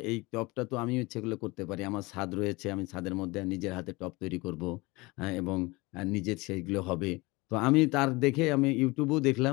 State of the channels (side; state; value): right; quieter; 23.4 dB